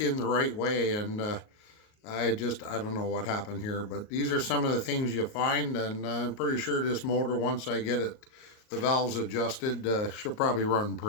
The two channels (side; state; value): right; late; 38 ms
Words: the right way, and I don't know what happened here, but these are some of the things you find, and I'm pretty sure this motor, once I get it, the valves adjusted, she'll probably run